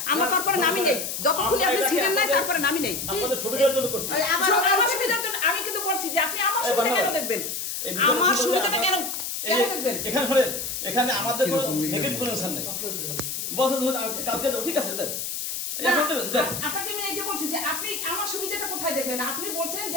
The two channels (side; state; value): left; noise; hiss, 4 dB below the sound